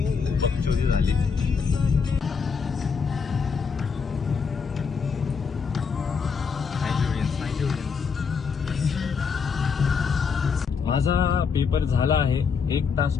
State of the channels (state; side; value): quieter; right; 5.8 dB